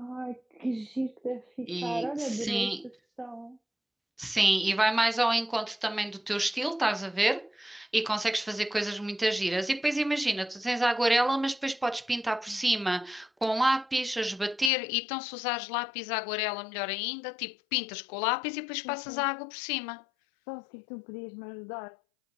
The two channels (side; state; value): right; drops out; at 14.7 s